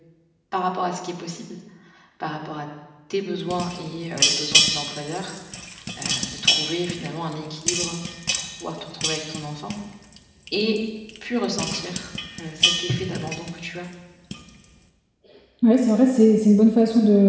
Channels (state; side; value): identical; both; correlation 1.00